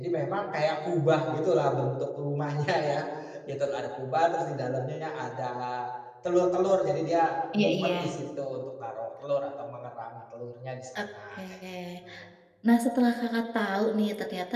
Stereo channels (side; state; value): both; identical; correlation 1.00